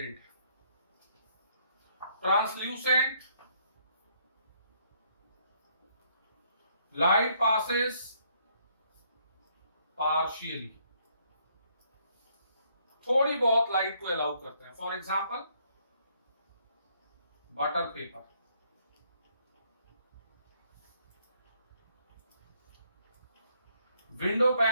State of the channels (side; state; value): both; inverted; correlation -0.69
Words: है। ट्रांसल्यूसेंट, लाइट पासेस पार्शियली, थोड़ी बहुत लाइट को अलाउ करते हैं। For example butter paper, window